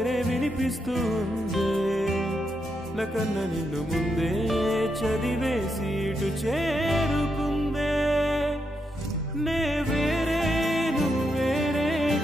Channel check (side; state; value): both; normal; correlation 0.82